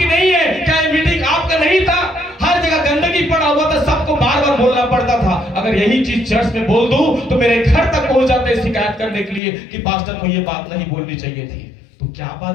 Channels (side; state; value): right; drops out; at 9.4 s